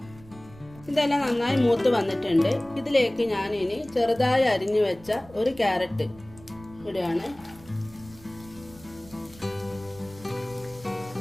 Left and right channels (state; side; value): noise; right; rumble, 22 dB below the sound